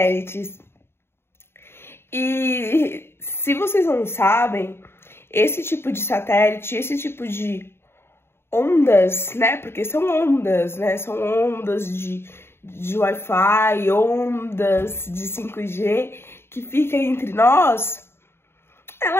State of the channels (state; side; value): late; right; 0.12 ms